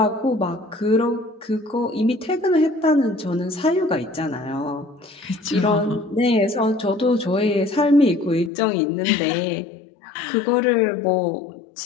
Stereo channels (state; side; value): drops out; right; at 8.5 s